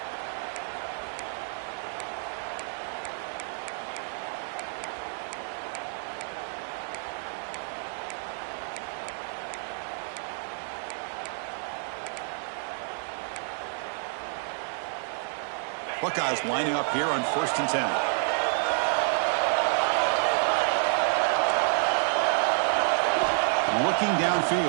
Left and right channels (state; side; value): silent; left; 56 dB below the other